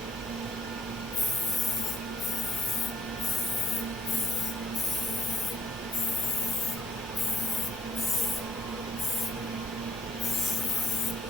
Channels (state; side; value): normal; both; correlation 0.65